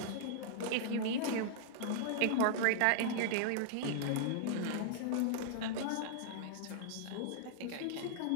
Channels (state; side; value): different; both; correlation -0.01